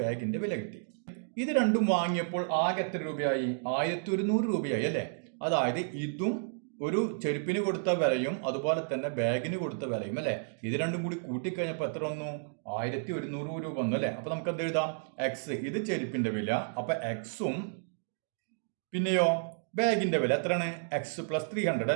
വില കിട്ടി. ഇത് രണ്ടും വാങ്ങിയപ്പോൾ ആകെ എത്ര രൂപയായി? 1100 രൂപയായി അല്ലെ? അതായത് ഇതും ഒരു ചെരുപ്പിന് കൊടുത്ത വിലയും അതുപോലെ തന്നെ ബാഗിന് കൊടുത്ത വിലയും അല്ലെ? ഇത് രണ്ടും കൂടി കൂട്ടിക്കഴിഞ്ഞപ്പോൾ എത്ര വന്നു? 1100 രൂപ വന്നു അല്ലെ? അപ്പൊ നമുക്ക് എന്ത് എഴുതാം? എക്സ്, ഇത് ചെരുപ്പിന്റെ വില. അപ്പൊ എക്സും പിന്നെയോ ബാഗിന്റെ വില എത്രയാണ്? എക്സ് പ്ലസ് 300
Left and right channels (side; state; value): left; silent; digital silence